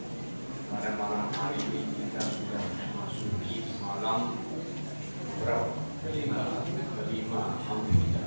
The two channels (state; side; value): inverted; both; correlation -1.00